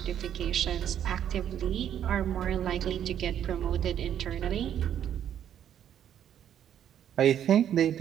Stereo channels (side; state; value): left; quieter; 9.9 dB